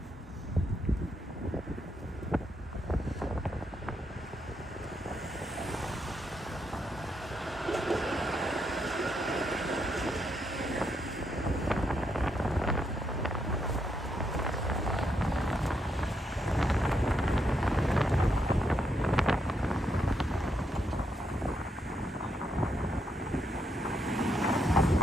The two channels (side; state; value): both; normal; correlation 0.78